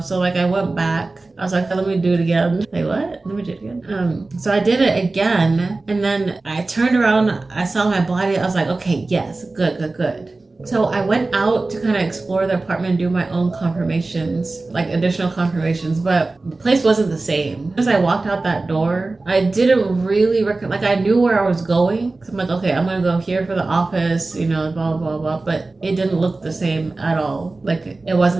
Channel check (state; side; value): quieter; left; 3.3 dB